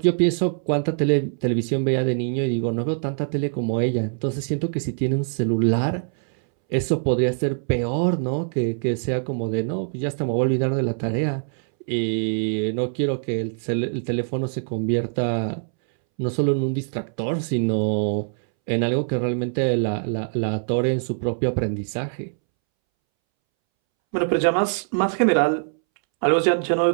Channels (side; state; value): left; silent; 63 dB below the other